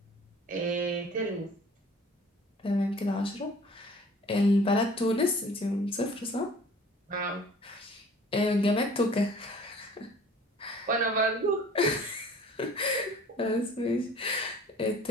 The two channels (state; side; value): normal; both; correlation 0.49